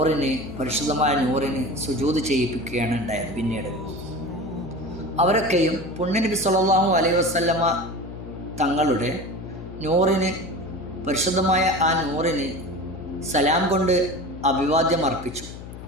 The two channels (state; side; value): noise; left; hum, 12 dB below the sound